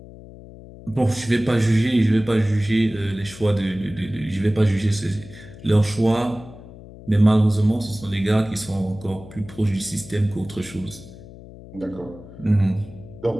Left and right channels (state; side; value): noise; left; hum, 17 dB below the sound